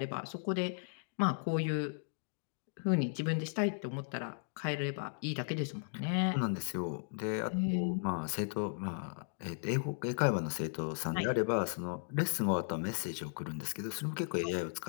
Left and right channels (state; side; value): silent; right; digital silence